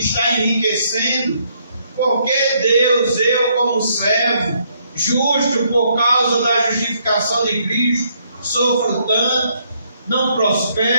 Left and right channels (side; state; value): both; inverted; correlation -0.71